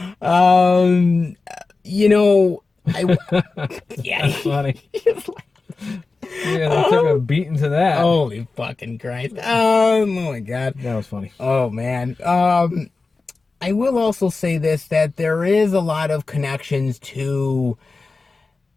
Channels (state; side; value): quieter; right; 3.9 dB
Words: that. You know, yeah. That's funny. Yeah, they took a beating to that. Holy fucking Christ. Oh my God. That was funny. Oh man. I will also say this, that there is a lot of connections to